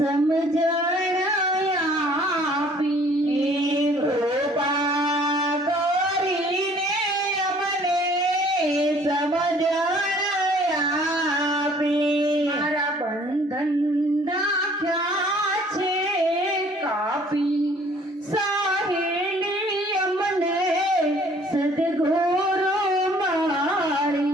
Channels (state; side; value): normal; both; correlation 0.56